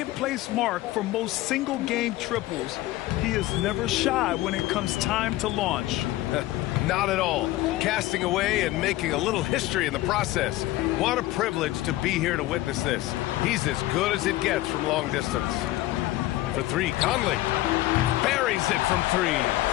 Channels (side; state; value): right; quieter; 16.6 dB